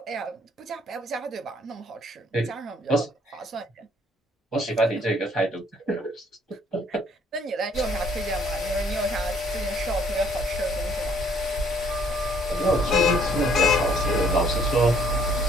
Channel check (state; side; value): normal; both; correlation 0.63